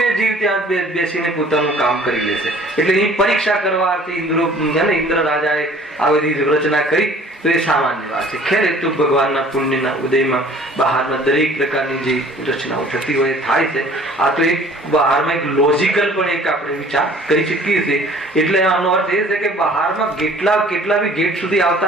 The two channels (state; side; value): normal; both; correlation 0.51